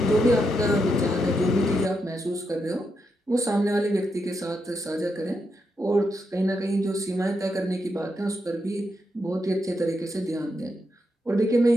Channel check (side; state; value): both; normal; correlation 0.83